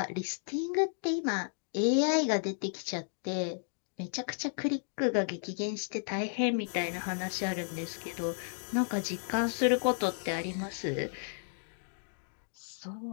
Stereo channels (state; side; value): silent; right; digital silence